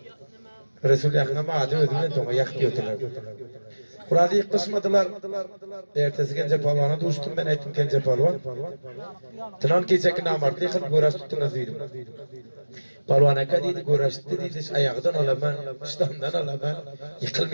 Resulullah'ın ama adım ödümden toğa yaktı yotular. Kur'an'ı ilk kısmadılar. Ertesi Gence Polvan'a düştüm ben aytım Gence Polvan. Tınan keçek namartlı yıkıp göğraş tuttunuz dedim. Polvan aka deydi, göğraştı deydi, ayağıdan alaman, İslam'dan alaman,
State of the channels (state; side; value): inverted; both; correlation -1.00